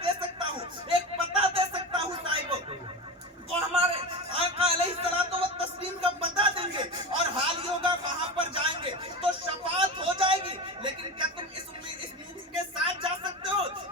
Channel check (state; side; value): normal; both; correlation 0.25